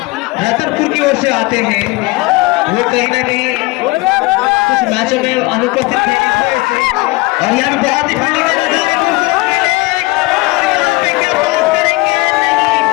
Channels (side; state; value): right; quieter; 22.8 dB